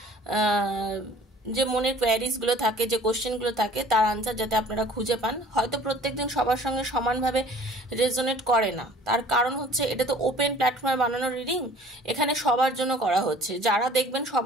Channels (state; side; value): normal; both; correlation 0.50